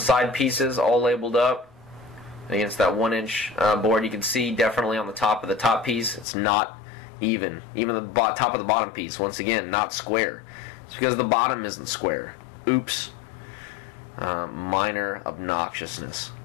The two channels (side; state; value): right; drops out; at 6.2 s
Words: side pieces all labeled up against that 1-inch board. You can see definitely on the top of the top piece it's not even. Even the top of the bottom piece, once again, not square. It's because the bottom isn't square. Oops. Minor obnoxiousness.